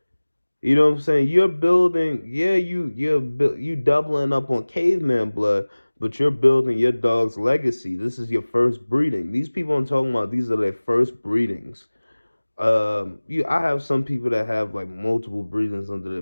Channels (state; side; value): inverted; both; correlation -1.00